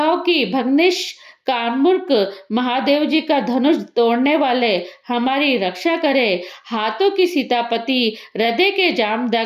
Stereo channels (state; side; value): identical; both; correlation 1.00